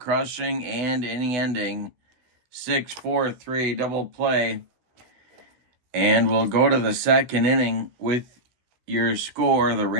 and inning-ending 6-4-3 double play. And we'll go to the second inning with your score, the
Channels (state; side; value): late; left; 16 ms